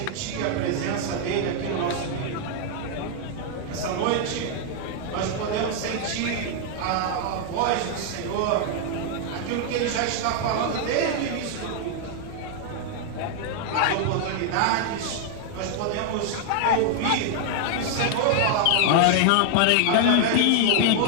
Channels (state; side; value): different; both; correlation 0.00